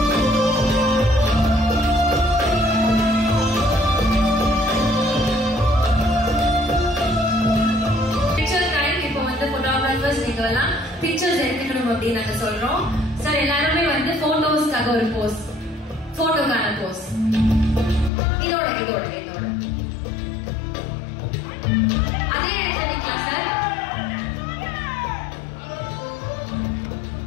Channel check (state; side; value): drops out; right; at 18.1 s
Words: நீங்கெல்லாம் பிக்சர்ஸ் எடுத்துக்கணும் அப்படின்னு நாங்க சொல்றோம். சார் எல்லாருமே வந்து போட்டோஸ்க்காக ஒரு போஸ், போட்டோக்கான போஸ் இதோட இதோட இதோட அதே எடுத்துக்கலாம் sir.